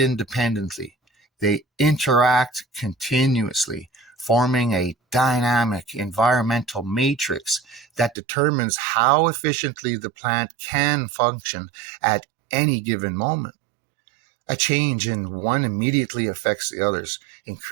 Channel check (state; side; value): drops out; left; at 8.2 s